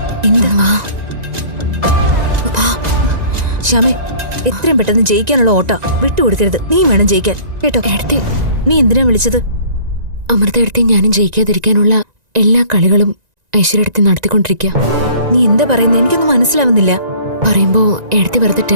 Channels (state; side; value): late; left; 1.9 ms